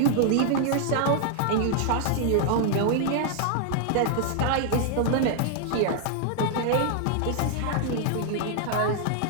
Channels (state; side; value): different; both; correlation 0.00